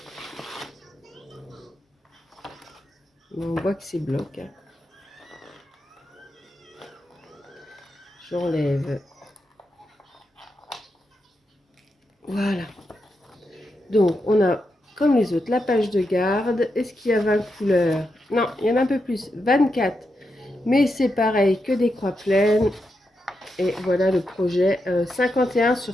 On voit que c'est bloc. Hein. J'enlève. Voilà. Donc, on a, comme les autres, la page de garde. Est-ce qu'il y a 20 couleurs? Non, il y en a un peu plus. 24. Mais c'est pareil que des croix pleines. Et voilà le projet. 51 sur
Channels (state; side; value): normal; both; correlation 0.85